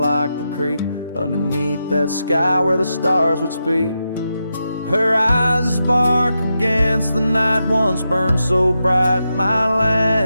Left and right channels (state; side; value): inverted; both; correlation -0.87